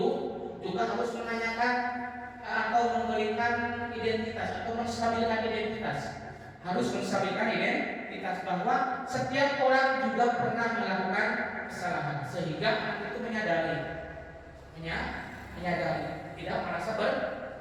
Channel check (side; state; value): both; identical; correlation 1.00